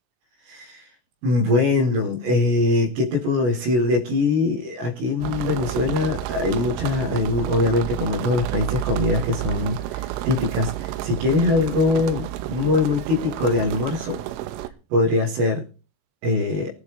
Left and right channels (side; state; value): left; late; 25 ms